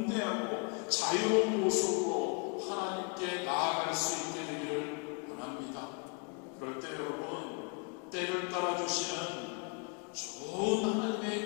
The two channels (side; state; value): right; quieter; 35.2 dB